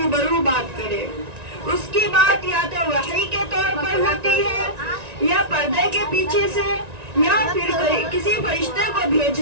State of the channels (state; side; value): late; left; 1.9 ms